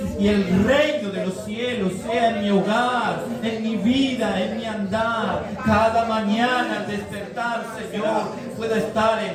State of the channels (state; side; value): identical; both; correlation 1.00